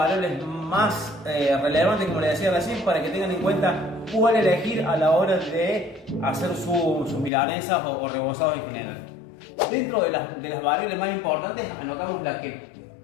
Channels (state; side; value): drops out; right; at 7.3 s